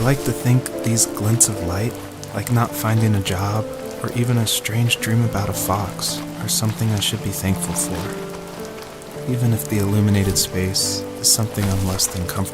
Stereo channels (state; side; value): identical; both; correlation 1.00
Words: like to think these glints of light, like not finding a job or even a strange dream about a fox, are something I should be thankful for, even if the illuminated space is something I'm less than